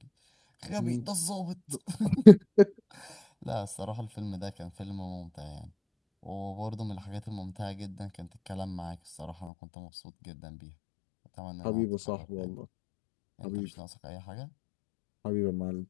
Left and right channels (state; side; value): drops out; right; at 9.5 s